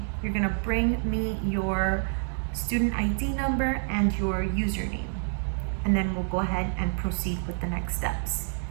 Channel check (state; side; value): silent; left; digital silence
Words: You're gonna bring me your student ID number and your username, and then we'll go ahead and proceed with the next steps.